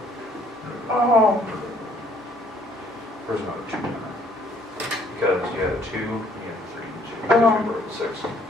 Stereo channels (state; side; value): normal; both; correlation 0.62